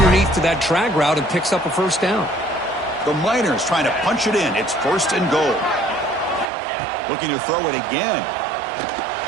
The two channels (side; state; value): left; drops out; at 6.5 s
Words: to that drag route and picks up a first down. The Miners trying to punch it in. It's first and goal. Looking to throw it again.